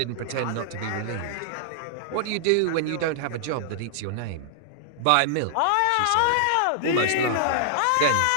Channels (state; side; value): different; both; correlation -0.01